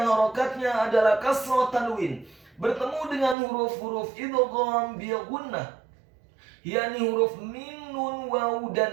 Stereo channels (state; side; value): drops out; left; at 3.4 s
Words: harokatnya adalah kasrah tanwin, bertemu dengan huruf-huruf idgham bil gunnah, yakni huruf mim, nun, waw,